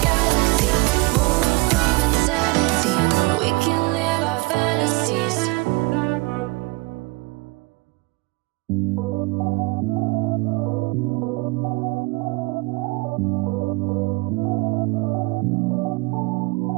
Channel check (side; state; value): left; quieter; 25.0 dB